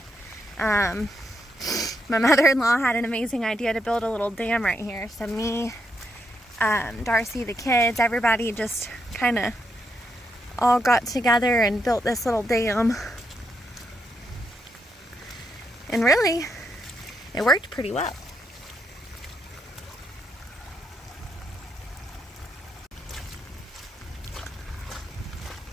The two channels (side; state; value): both; normal; correlation 0.80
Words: My mother-in-law had an amazing idea to build a little dam right here. So me, Darcy, the kids, everybody just kind of all got together and built this little dam. And really, it worked pretty well.